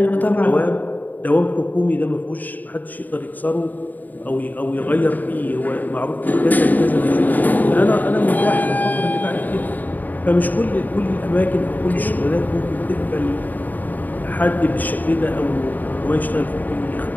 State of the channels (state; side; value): late; right; 0.084 ms